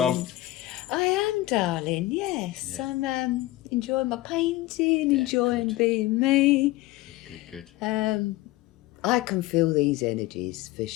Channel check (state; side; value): quieter; right; 17.5 dB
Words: I am, darling. Yes, Yeah. I'm enjoying my painting, Yeah, enjoying good. being me. Good. I can feel these energies for